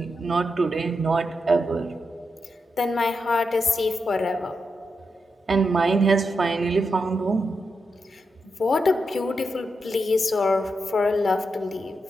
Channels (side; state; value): both; normal; correlation 0.86